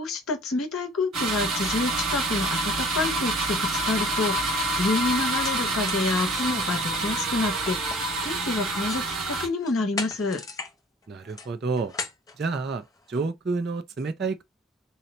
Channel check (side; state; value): both; normal; correlation 0.49